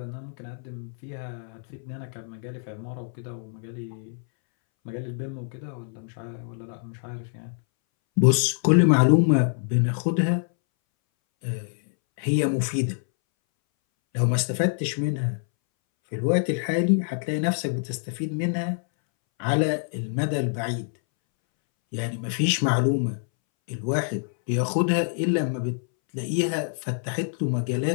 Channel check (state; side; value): silent; right; 61 dB below the other